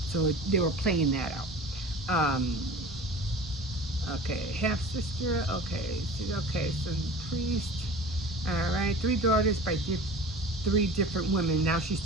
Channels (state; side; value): normal; both; correlation 0.38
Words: So they were playing that out. Okay, half sister. Okay, so priest. All right, three daughters by three different women. Now she's